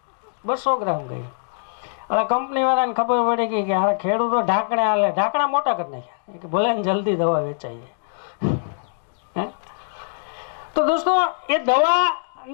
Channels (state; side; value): silent; right; digital silence